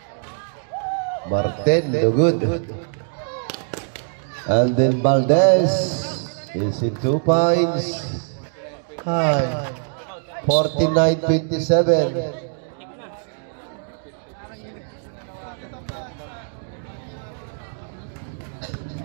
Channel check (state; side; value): silent; left; 64 dB below the other